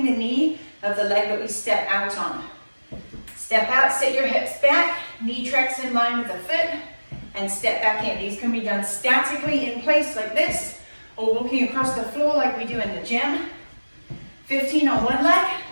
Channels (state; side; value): inverted; both; correlation -1.00